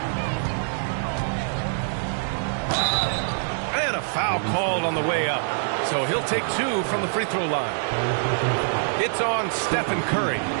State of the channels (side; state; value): left; silent; digital silence